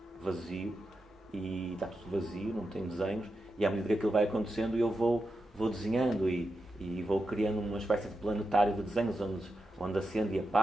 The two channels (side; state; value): both; normal; correlation 0.88